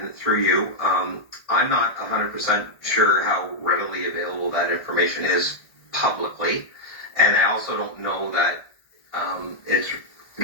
through you. I'm not 100% sure how readily available that information is publicly, and I also don't know that it's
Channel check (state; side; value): late; right; 1.6 ms